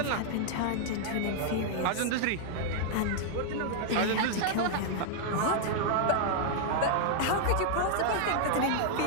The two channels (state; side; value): different; both; correlation -0.01